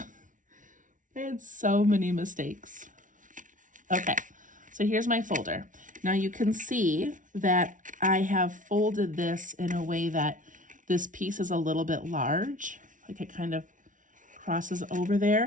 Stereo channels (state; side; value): late; left; 0.38 ms